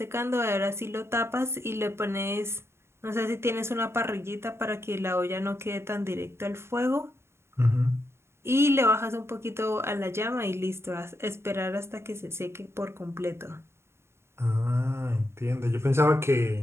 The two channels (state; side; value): late; left; 0.12 ms